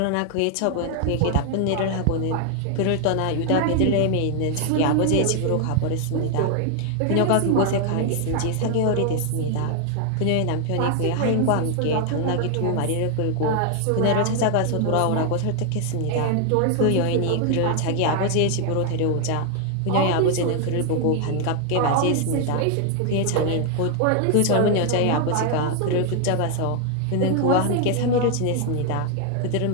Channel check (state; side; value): different; both; correlation 0.00